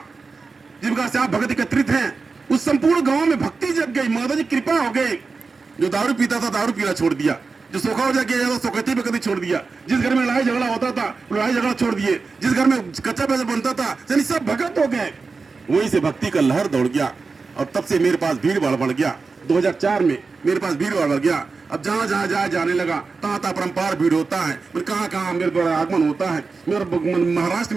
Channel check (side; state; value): left; quieter; 4.4 dB